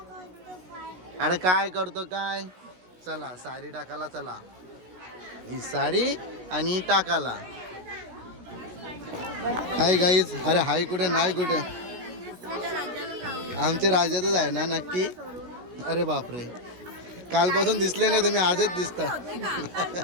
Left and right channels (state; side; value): late; left; 16 ms